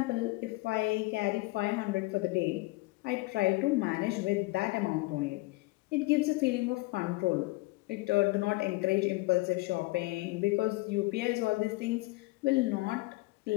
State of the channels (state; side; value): quieter; right; 22.4 dB